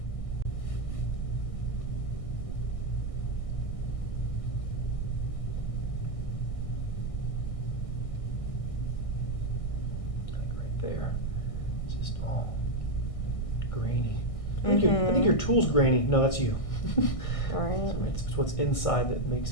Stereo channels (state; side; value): late; right; 1.6 ms